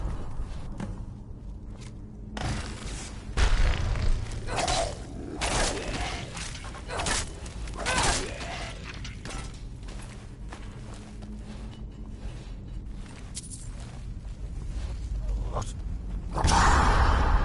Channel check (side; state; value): both; identical; correlation 1.00